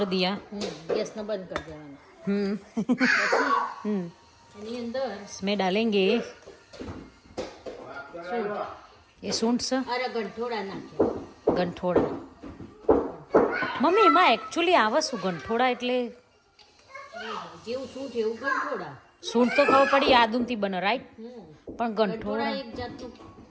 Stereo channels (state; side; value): identical; both; correlation 1.00